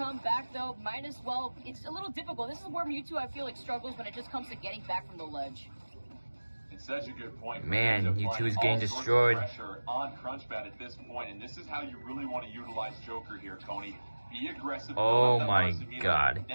back, though, might as well. It's a little difficult. This is where Mewtwo, I feel like, struggles when it just comes to getting back from the ledge. It's such a good point. Man, Mewtwo is getting destroyed. Pressure on Crunchbat at this point, and this is how you really want to utilize Joker here, Tony. Be aggressive. Oh my God.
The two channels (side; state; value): both; inverted; correlation -1.00